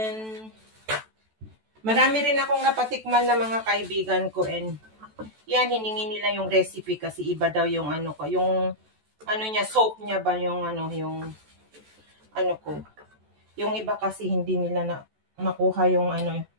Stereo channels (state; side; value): late; left; 14 ms